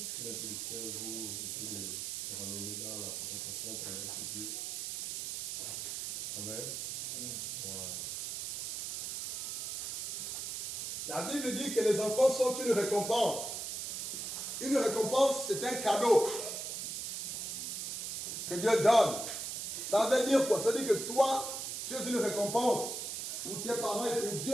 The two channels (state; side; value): noise; right; hiss, 4 dB below the sound